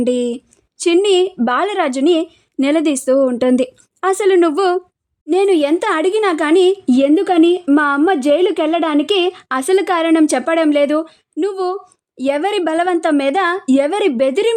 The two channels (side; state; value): both; identical; correlation 1.00